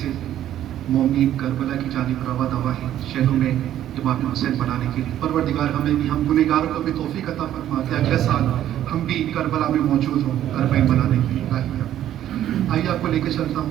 مومنین کربلا کی جانب رواں دوا ہے شہروں میں امام حسین بنانے کے لیے۔ پروردگار ہمیں بھی، ہم گنہگاروں کو بھی توفیق عطا فرما کہ اگلے سال ہم بھی کربلا میں موجود ہوں اربعین بنانے کے لیے۔ آئیے آپ کو لے کے چلتا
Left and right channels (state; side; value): quieter; left; 11.8 dB